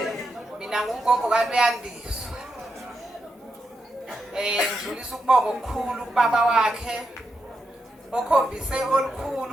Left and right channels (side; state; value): both; normal; correlation 0.85